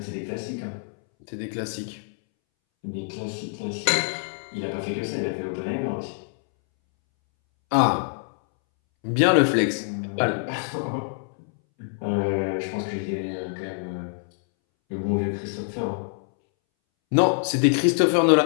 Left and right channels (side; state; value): right; silent; 62 dB below the other